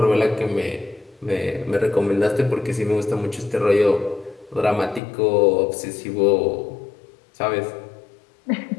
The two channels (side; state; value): right; drops out; at 5.0 s